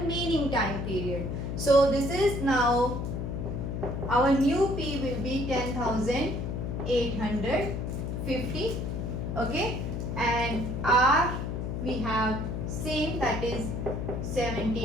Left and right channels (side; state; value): left; noise; hum, 3 dB below the sound